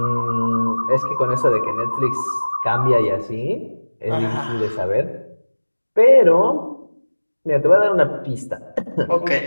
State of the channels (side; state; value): both; inverted; correlation -1.00